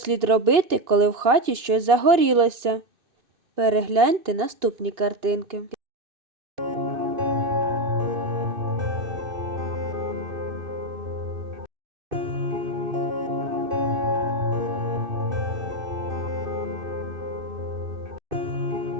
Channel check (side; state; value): left; late; 2.6 ms